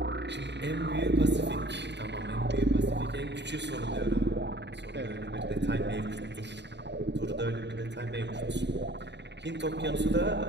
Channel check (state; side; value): late; left; 0.51 ms